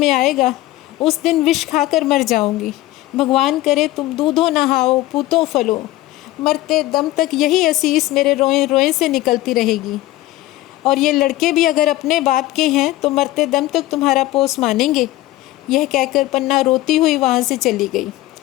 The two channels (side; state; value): right; quieter; 16.7 dB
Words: आएगा उस दिन विष खाकर मर जाऊंगी। भगवान करे तुम दूधो नहाओ पूतो फलो। मरते दम तक यही असीस मेरे रोए रोए से निकलती रहेगी। और ये लड़के भी अगर अपने बाप के हैं तो मरते दम तक तुम्हारा पोस मानेंगे। यह कहकर पन्ना रोती हुई वहाँ से चली गई।